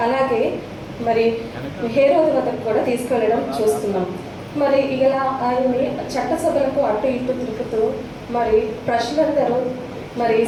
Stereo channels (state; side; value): identical; both; correlation 1.00